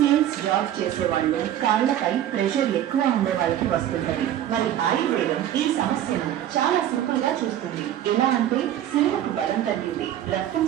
జాబ్ చేసేవాళ్ళు, కాళ్లపై ప్రెషర్ ఎక్కువ ఉండే వాళ్ళకి వస్తుంటది. మరి ఆయుర్వేదం ఈ సమస్యను చాలా సింపుల్ గా చూస్తుంది. ఎలా అంటే శిలకు బలం తగ్గింది, రక్తం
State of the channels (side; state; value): left; quieter; 11.6 dB